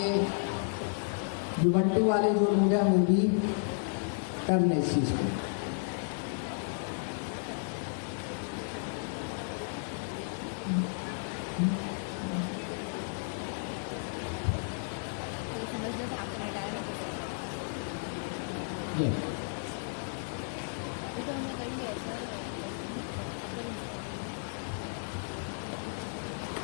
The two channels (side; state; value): right; silent; digital silence